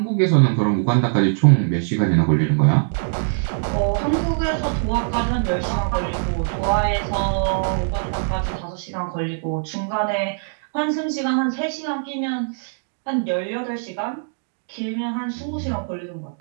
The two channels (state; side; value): silent; left; digital silence